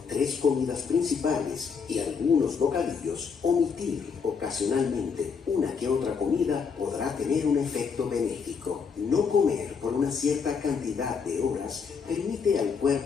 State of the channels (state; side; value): quieter; right; 5.8 dB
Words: 3 comidas principales y algunos bocadillos, omitir ocasionalmente una que otra comida podrá tener un efecto benéfico. No comer por una cierta cantidad de horas permite al